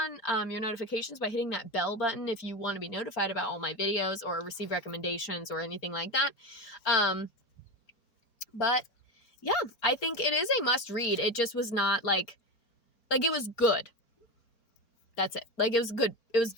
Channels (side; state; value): right; late; 4.3 ms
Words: on your notifications by hitting that bell button if you want to be notified about all my videos or receive recommendations or anything like that. But yeah, I think it is a must read. It just was not like it was good. That's it. Like, it was good. It was